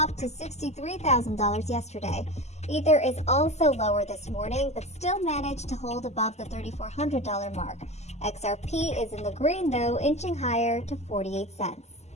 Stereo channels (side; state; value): right; late; 0.33 ms